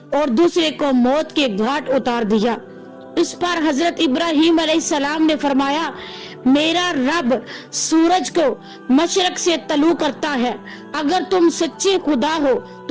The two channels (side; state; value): both; identical; correlation 1.00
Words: और दूसरे को मौत के घाट उतार दिया। इस पर हजरत इब्राहीम अलैहिस्सलाम ने फरमाया, मेरा रब सूरज को मशरक से तलू करता है, अगर तुम सच्चे खुदा हो